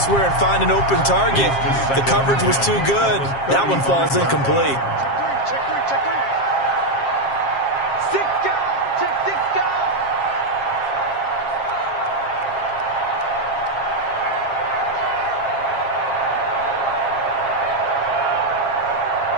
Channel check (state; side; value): late; right; 7.4 ms